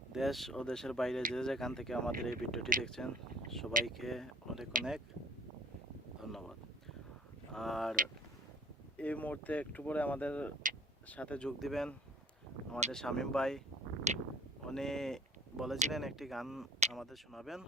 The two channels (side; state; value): both; normal; correlation 0.49